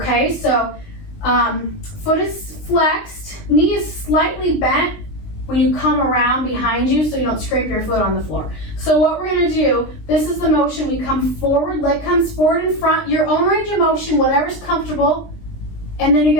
so foot is flexed, knee is slightly bent when you come around behind you so you don't scrape your foot on the floor. So what we're going to do, this is the motion. We come forward, leg comes forward in front, your own range of motion, whatever's comfortable. And then you're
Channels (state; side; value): late; right; 20 ms